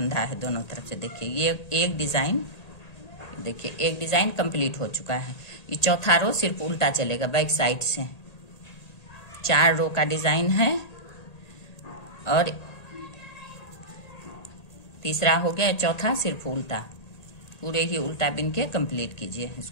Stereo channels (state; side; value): late; right; 1.8 ms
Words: है दोनों तरफ से। देखिए ये एक डिजाइन, देखिए एक डिजाइन कंप्लीट हो चुका है। ये चौथा रो सिर्फ उल्टा चलेगा बैक साइड से। 4 रो का डिजाइन है और तीसरा हो गया, चौथा सिर्फ उल्टा, पूरे ही उल्टा बिन के कंप्लीट कीजिए